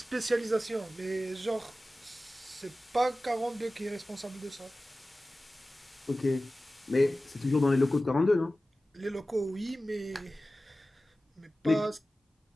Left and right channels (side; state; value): both; normal; correlation 0.96